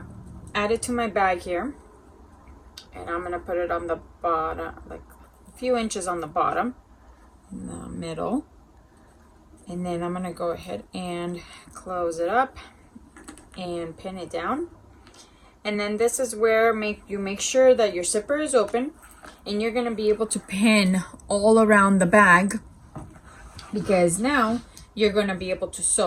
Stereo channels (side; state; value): both; identical; correlation 1.00